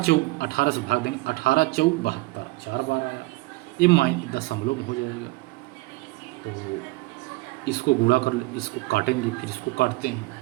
18 से भाग देंगे, 18 चौक 72, 4 बार आया, ये दशमलव में हो जाएगा। तो इसको गुणा कर, इसको काटेंगे, फिर इसको काटते हैं।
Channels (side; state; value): left; quieter; 22.0 dB